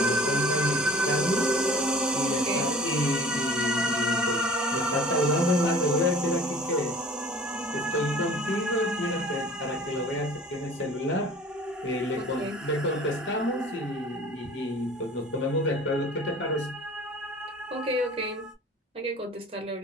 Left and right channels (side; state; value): both; normal; correlation 0.46